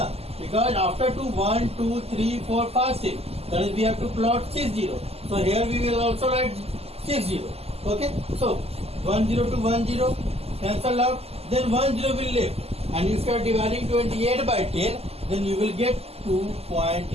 Because after 2, 1, 2, 3, 4, 5, 6. That is, we have to plot 6 0. So here we will also write 6 0. Okay. So 1 0 to 1 0 cancel out. Then 1 0 will left. And if you are dividing 28 by 10, then you will get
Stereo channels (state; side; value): late; left; 0.29 ms